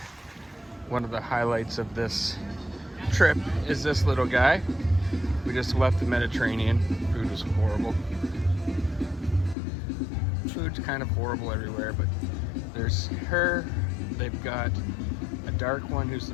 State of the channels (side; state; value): right; drops out; at 9.6 s